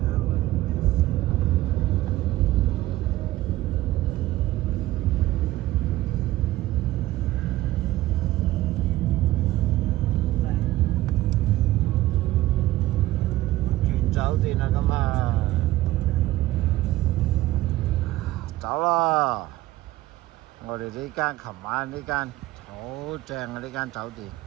酒店啦，咁啊，走啦！我哋呢間琴晚呢間好正啊！呢間酒店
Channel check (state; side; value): quieter; left; 16.4 dB